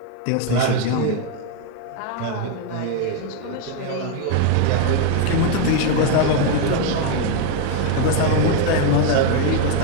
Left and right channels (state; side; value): different; both; correlation 0.01